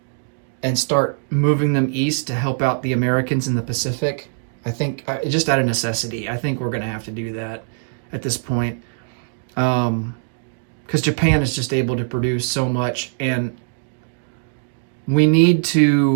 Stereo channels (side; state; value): left; silent; digital silence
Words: and start moving them east to help out the Americans in the Pacific. I think, just out of necessity, I think we're going to have to do that at this point. Because Japan is just able to produce so much, and we need